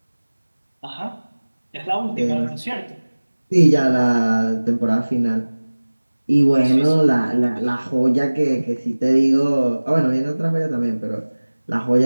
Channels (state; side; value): inverted; both; correlation -1.00